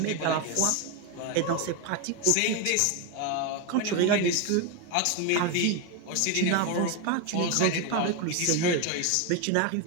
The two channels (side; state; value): both; different; correlation 0.02